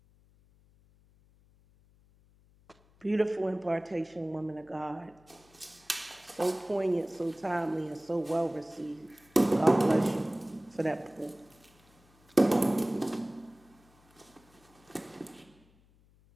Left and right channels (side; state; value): left; noise; hum, 30 dB below the sound